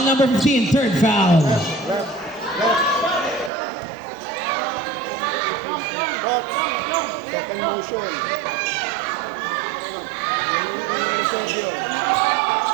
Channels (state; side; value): drops out; left; at 3.5 s